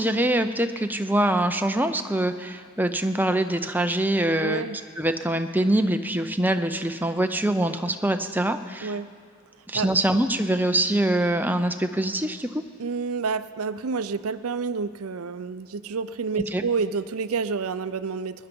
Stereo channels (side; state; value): both; normal; correlation 0.57